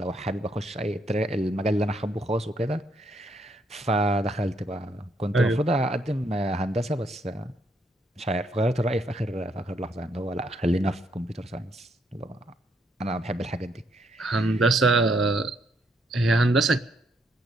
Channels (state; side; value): normal; both; correlation 0.73